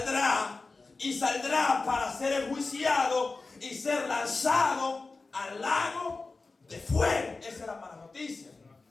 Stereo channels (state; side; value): quieter; right; 3.8 dB